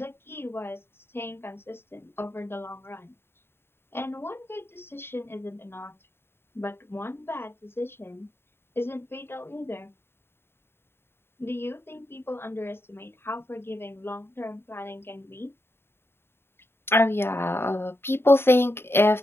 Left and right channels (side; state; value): right; late; 0.11 ms